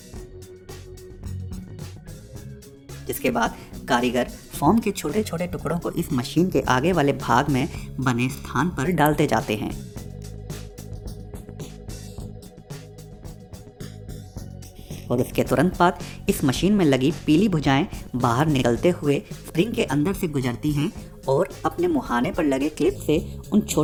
जिसके बाद कारीगर फोम के छोटे छोटे टुकड़ों को इस मशीन के आगे वाले भाग में बने स्थान पर डालते जाते हैं। और उसके तुरंत बाद इस मशीन में लगी पीली भुजाएं बाहर निकलते हुए स्प्रिंग के अंदर से गुजरती हैं और अपने मुहाने पर लगे क्लिप से उन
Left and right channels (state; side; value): identical; both; correlation 1.00